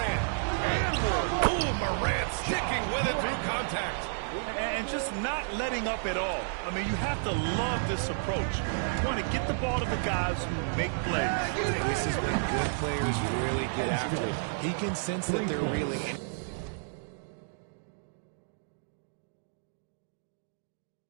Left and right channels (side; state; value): left; silent; digital silence